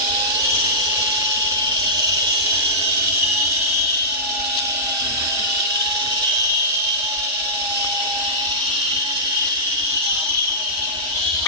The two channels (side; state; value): both; normal; correlation -0.15